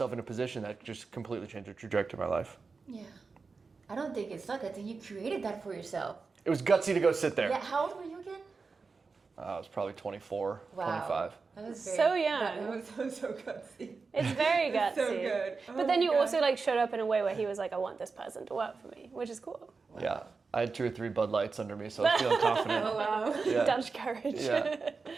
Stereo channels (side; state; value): left; quieter; 4.5 dB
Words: in a position that just completely changed the trajectory of my life. Yeah. I don't think it's luck. I think you created that for yourself. It was gutsy to go sit there. Yeah. How old were you again? I was probably 24, Wow. 25. That was So young. That was so gutsy. It's very gutsy. So good. But then you also showed up in a way where he was I want this person to work for me, which is cool. Wow. Yeah. I had 2 or 3 Bud Lights under me, so I was feeling confident. Oh, wow. Yeah. Dutch courage. Yeah.